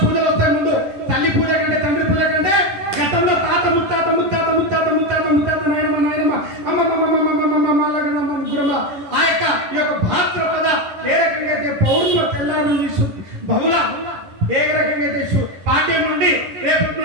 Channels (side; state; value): left; late; 11 ms